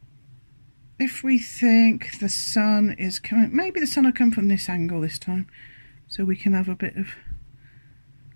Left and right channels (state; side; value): inverted; both; correlation -1.00